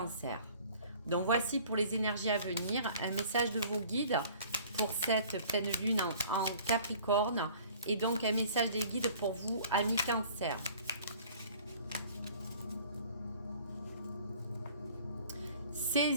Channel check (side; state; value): both; inverted; correlation -0.50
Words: Donc voici pour les énergies à venir, un message de vos guides pour cette pleine lune en Capricorne et donc un message des guides pour vous, amis Cancer.